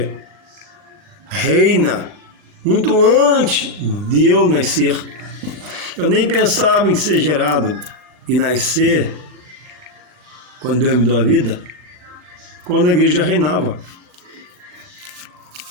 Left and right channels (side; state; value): left; late; 39 ms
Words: reina muito antes de eu nascer. Eu nem pensava em ser gerado e nascer quando Deus me deu a vida, quando a igreja reinava.